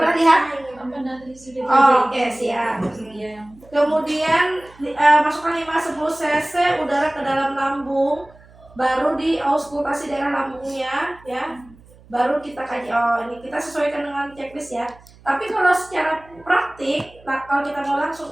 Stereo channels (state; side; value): noise; right; hum, 25 dB below the sound